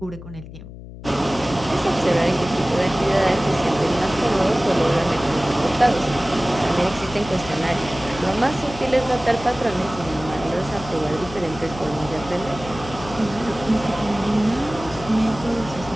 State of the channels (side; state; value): left; noise; hum, 14 dB below the sound